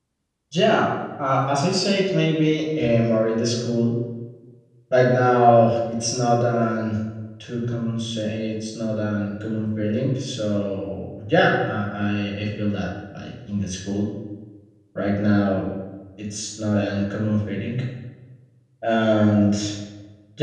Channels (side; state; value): both; identical; correlation 1.00